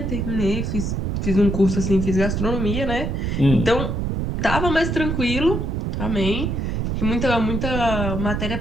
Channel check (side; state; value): right; noise; rumble, 1 dB below the sound